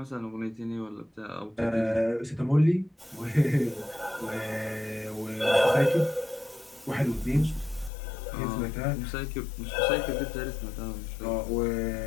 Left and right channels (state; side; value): drops out; right; at 7.9 s